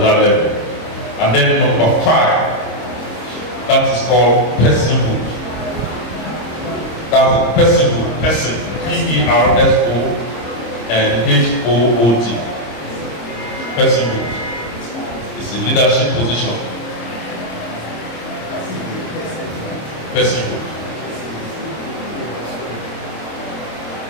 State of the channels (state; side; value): late; right; 26 ms